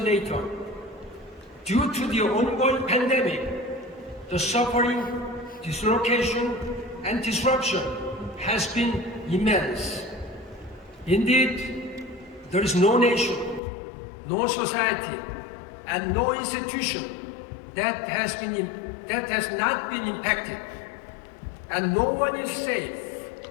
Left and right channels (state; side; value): drops out; right; at 13.6 s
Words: Due to the ongoing pandemic, the suffering, dislocation, and disruption has been immense. Indeed, there is no nation, no society, and no institution that has not been impacted, and no one is safe